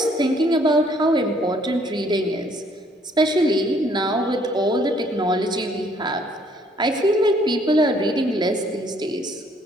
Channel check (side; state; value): both; normal; correlation 0.63